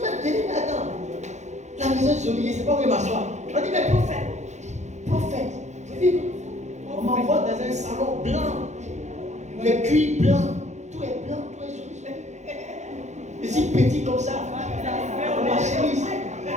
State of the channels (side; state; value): left; late; 0.34 ms